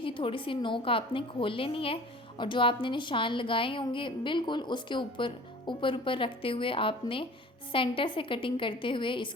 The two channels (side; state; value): both; normal; correlation 0.44